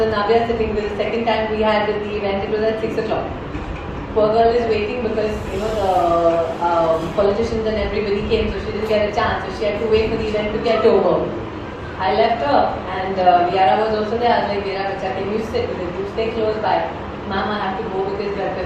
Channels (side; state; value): both; identical; correlation 1.00